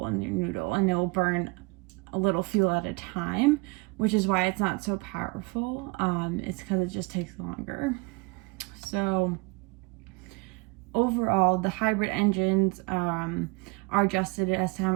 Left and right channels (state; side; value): quieter; left; 27.5 dB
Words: in your noodle, and it will burn a little fuel at a time, which is why it's not so powerful. It's because it just takes longer. So overall, the hybrid engines are adjusted as to how